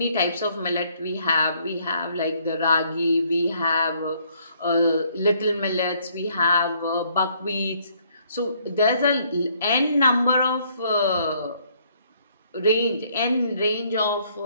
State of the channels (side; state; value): both; inverted; correlation -0.66